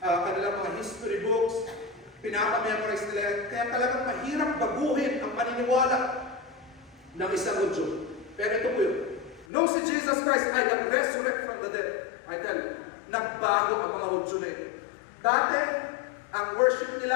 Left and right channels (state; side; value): drops out; right; at 9.5 s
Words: kanilang mga history books, pinapamemorize nila. Kaya talagang mahirap baguhin ang paniniwala ng isang Hudyo. Pero ito po yun. Nung si Jesus Christ ay nag-resurrect from the dead, I tell you, nagbago ang mga Hudyo na ito. Dati, ang worship